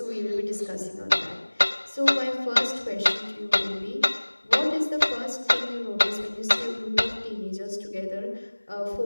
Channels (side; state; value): both; inverted; correlation -1.00